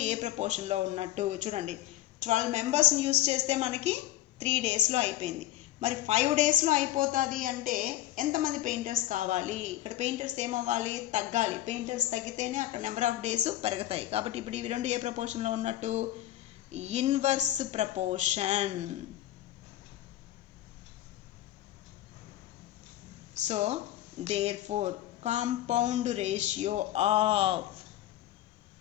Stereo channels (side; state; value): right; quieter; 13.9 dB